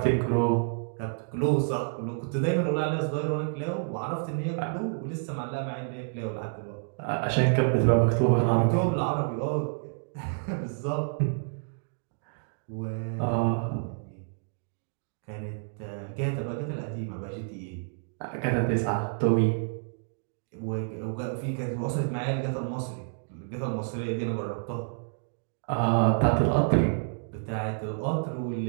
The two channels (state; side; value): silent; left; digital silence